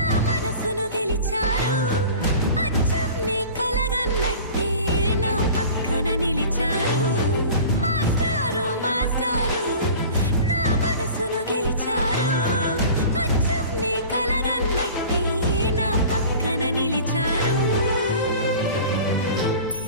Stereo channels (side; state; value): both; inverted; correlation -0.40